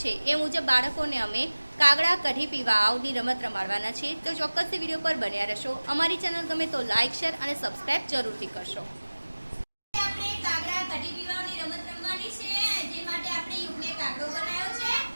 છે એ મુજબ બાળકોને અમે કાગડા કઢી પીવા આવની રમત રમાડવાના છીએ, તો ચોક્કસથી વિડીયો પર બન્યા રહેશો। અમારી ચેનલ ગમે તો લાઇક, શેર અને સબસ્ક્રાઇબ જરૂરથી કરશો। આપણે કાગડા કઢી પીવાની રમત રમવાની છે, જે માટે આપણે યુગને કાગડો બનાવ્યો છે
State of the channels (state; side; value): inverted; both; correlation -1.00